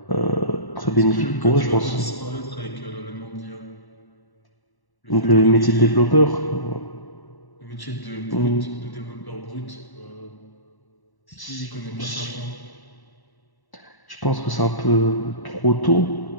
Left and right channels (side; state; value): right; late; 1.1 ms